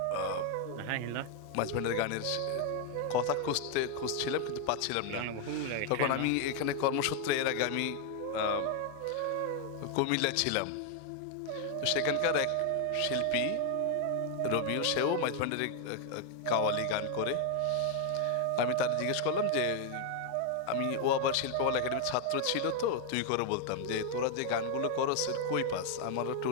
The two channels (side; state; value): both; different; correlation 0.00